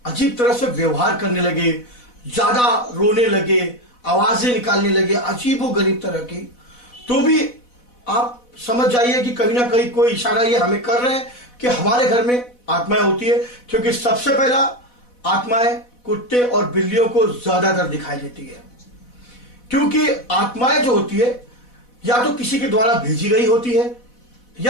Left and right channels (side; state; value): right; late; 4.1 ms